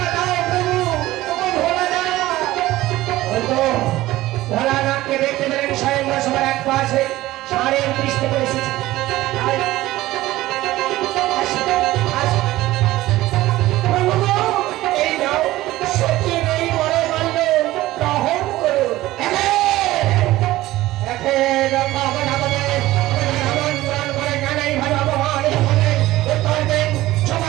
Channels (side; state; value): left; quieter; 16.7 dB